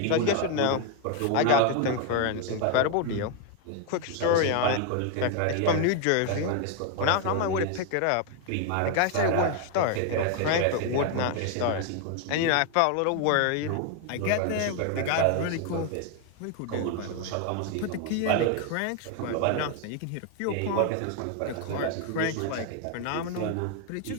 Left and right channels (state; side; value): different; both; correlation 0.01